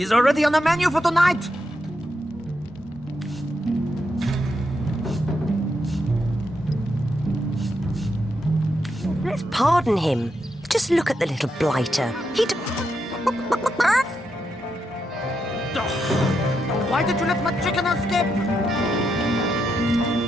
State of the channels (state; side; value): normal; both; correlation 0.82